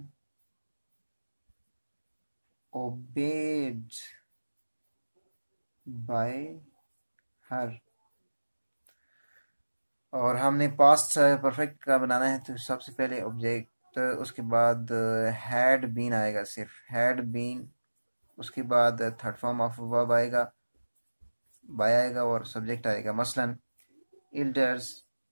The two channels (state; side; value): inverted; both; correlation -1.00